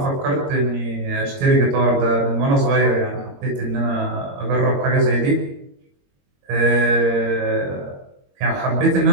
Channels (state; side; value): late; left; 22 ms